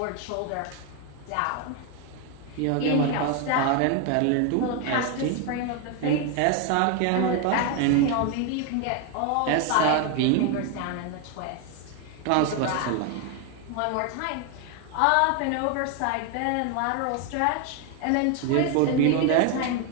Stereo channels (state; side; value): different; both; correlation 0.01